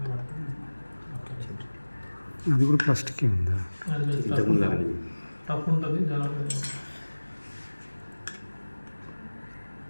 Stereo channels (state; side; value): inverted; both; correlation -1.00